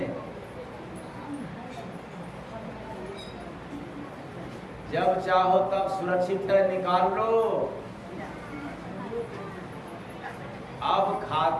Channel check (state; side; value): identical; both; correlation 1.00